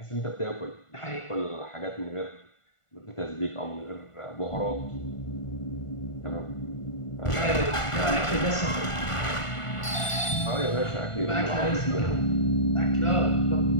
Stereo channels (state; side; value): late; right; 1.5 ms